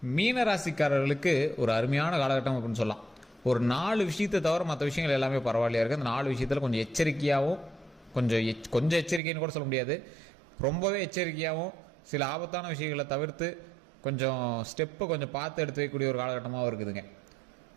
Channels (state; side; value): drops out; left; at 9.2 s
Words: மீன ராசிக்காரர்களுக்கு ஒரு அருமையான காலகட்டம் அப்படின்னு சொல்லலாம். ஒரு 4 விஷயத்தை தவிர மற்ற விஷயங்கள் எல்லாமே பரவாயில்லையா இருக்குது. அந்த 4 விஷயத்தில் கொஞ்சம் எச்சரிக்கையாகவும் கொஞ்சம் எச்சரிக்கைன்னு கூட சொல்ல முடியாது, ரொம்பவே எச்சரிக்கையாகவும் சில ஆபத்தான விஷயங்களை தவிர்த்து கொஞ்சம் ஸ்டெப்பை கொஞ்சம் பார்த்து எடுத்து வைக்கக்கூடிய ஒரு காலகட்டமாக இருக்குதுங்க.